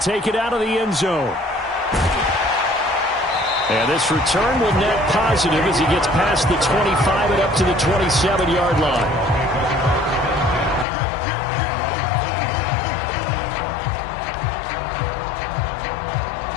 it out of the end zone. And this return will net positive as he gets past the 25 and up to the 27-yard line.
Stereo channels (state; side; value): drops out; right; at 10.9 s